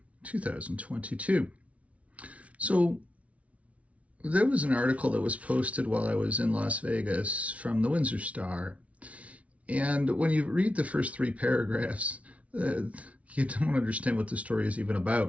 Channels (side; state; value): left; late; 0.065 ms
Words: 2022. So there was an article that was posted while I was in Las Vegas from the Windsor Star. And when you read the first three paragraphs, you don't understand what the story is even